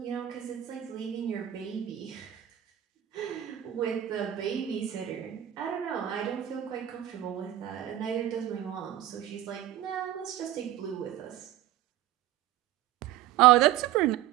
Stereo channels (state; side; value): quieter; left; 12.6 dB